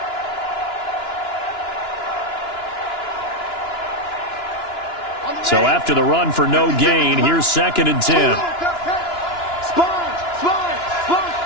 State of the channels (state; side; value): late; right; 2.9 ms